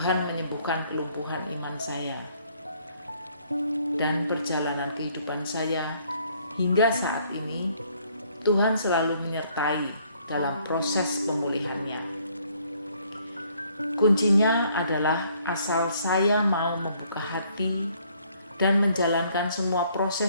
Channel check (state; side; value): inverted; both; correlation -0.64